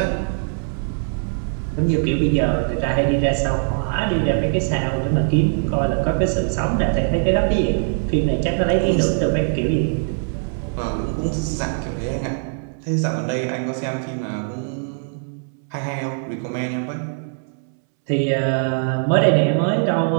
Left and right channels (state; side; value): silent; left; 65 dB below the other